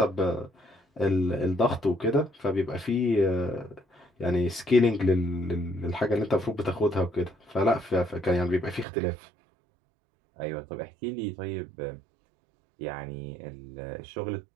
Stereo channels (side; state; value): left; drops out; at 8.8 s